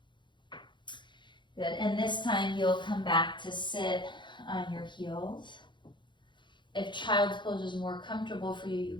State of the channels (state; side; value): late; right; 0.23 ms